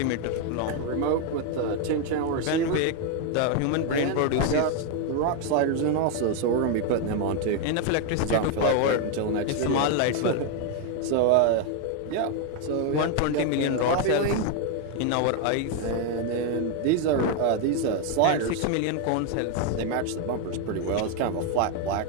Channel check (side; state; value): both; different; correlation 0.01